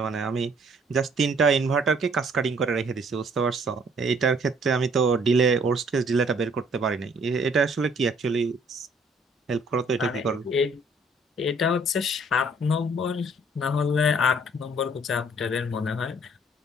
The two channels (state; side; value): normal; both; correlation 0.61